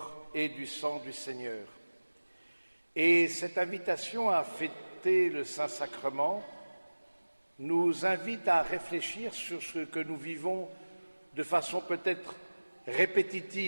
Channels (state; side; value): inverted; both; correlation -1.00